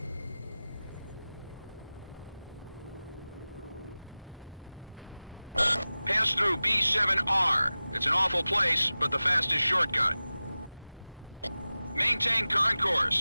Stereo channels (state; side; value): inverted; both; correlation -0.97